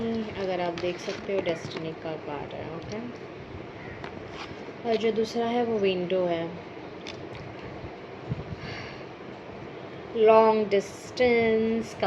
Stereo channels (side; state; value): both; identical; correlation 1.00